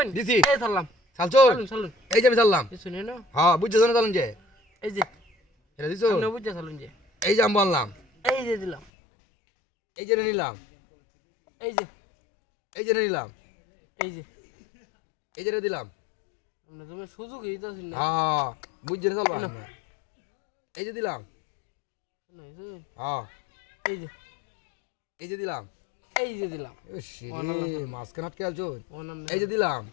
দিছি এই ধরলাম চালছুন চলুন এই যে আমি চাললাম দিছুন না হ্যাঁ বুঝছো না চালুন যে এই যে এটা দিছো আপনি বুঝতে চলুন যে এই যে আমি বললাম এই যে দিলাম এই যে নিলাম এই যে এই যে নিলাম এই যে এই যে দিলাম আপনি তুমি সুযোগ দিতেছেন না হ্যাঁ বুঝছো না চালবা এই যে দিলাম হ্যাঁ এই যে এই যে দিলাম এই যে দিলাম মাঝখানে আটকে আছো অনাম এই যে দিলাম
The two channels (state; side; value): drops out; right; at 8.8 s